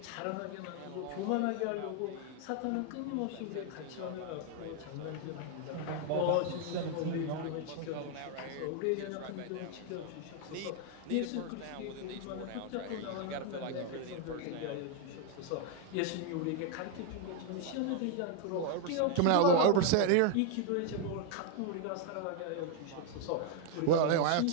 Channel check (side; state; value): both; different; correlation 0.01